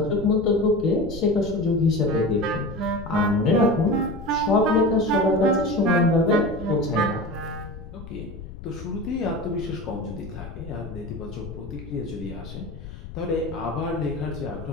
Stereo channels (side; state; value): left; noise; rumble, 13 dB below the sound